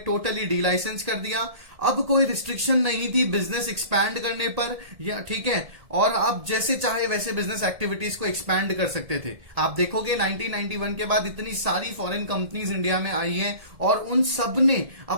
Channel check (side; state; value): left; late; 1.8 ms